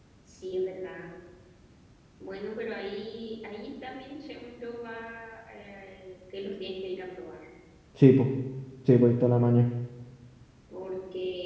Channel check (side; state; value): both; identical; correlation 1.00